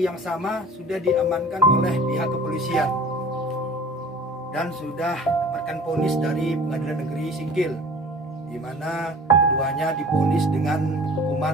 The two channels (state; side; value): normal; both; correlation 0.44